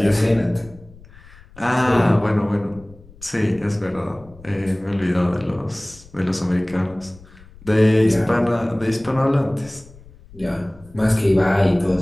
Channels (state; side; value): noise; left; rumble, 23 dB below the sound